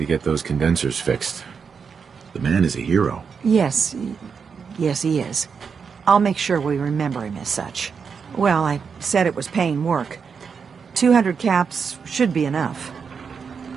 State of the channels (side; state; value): left; quieter; 6.0 dB